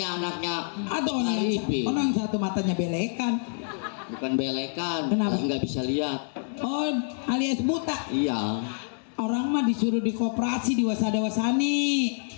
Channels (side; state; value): right; silent; 60 dB below the other